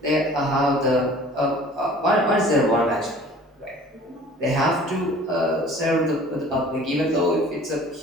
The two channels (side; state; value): both; normal; correlation 0.48